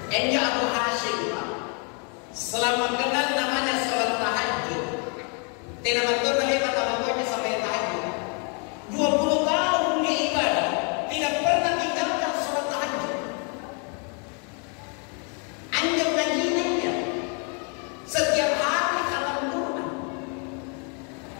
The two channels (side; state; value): right; quieter; 37.5 dB